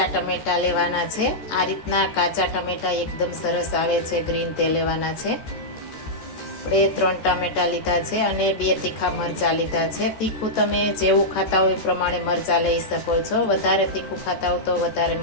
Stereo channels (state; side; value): late; right; 13 ms